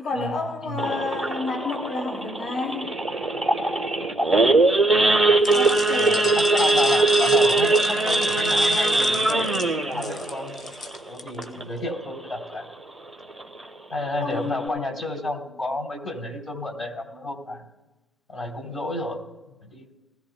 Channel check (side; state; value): both; normal; correlation 0.72